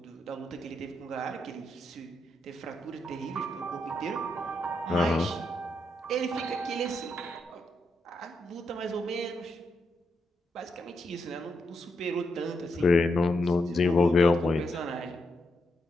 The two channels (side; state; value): both; normal; correlation 0.82